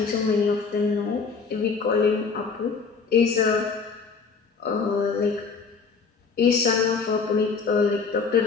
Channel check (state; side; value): quieter; right; 5.1 dB